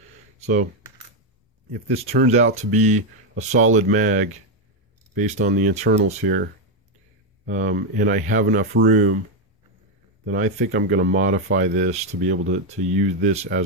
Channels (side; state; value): both; normal; correlation 0.04